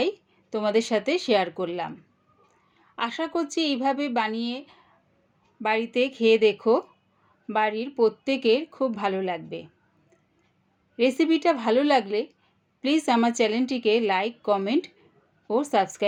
তোমাদের সাথে শেয়ার করলাম। আশা করছি এইভাবে বানিয়ে বাড়িতে খেয়ে দেখো, বাড়ির প্রত্যেকের খুব ভালো লাগবে। রেসিপিটা ভালো লাগলে প্লিজ আমার চ্যানেলটিকে লাইক, কমেন্ট ও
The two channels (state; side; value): identical; both; correlation 1.00